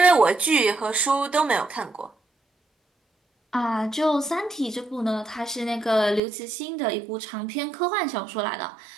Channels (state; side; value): drops out; left; at 6.2 s